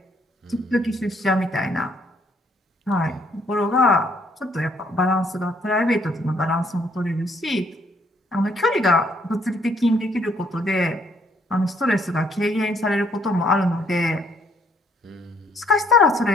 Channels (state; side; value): normal; both; correlation 0.67